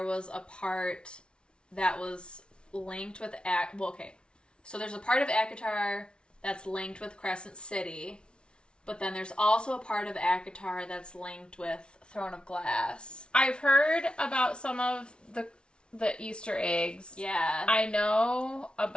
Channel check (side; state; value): right; late; 0.057 ms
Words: was a part that was linked with so there's a part of ACOTAR that's linked with Crescent City, but then there's also a part of ACOTAR that's linked with Throne of Glass. I've heard about some of the Easter eggs. Yeah. I know